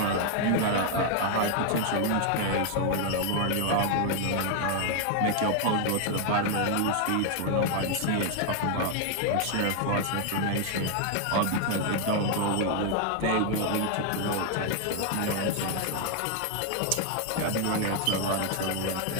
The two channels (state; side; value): different; both; correlation 0.00